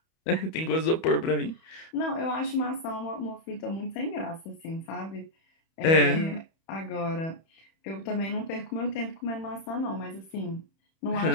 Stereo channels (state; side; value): late; right; 31 ms